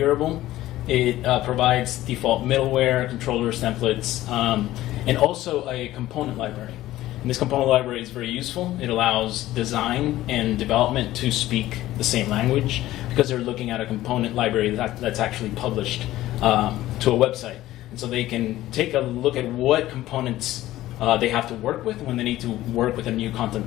It provides default middleware, controllers, templates, and also a component library. And this component library is very useful. It allows design and development to speak the same language because they're looking at a component library that's actually published to a website. And so they can take a look at what components they have to work with when they need to work with a new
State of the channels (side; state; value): right; quieter; 15.3 dB